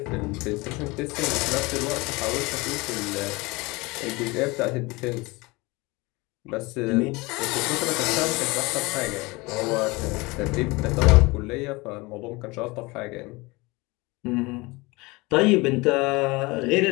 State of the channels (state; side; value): quieter; right; 23.9 dB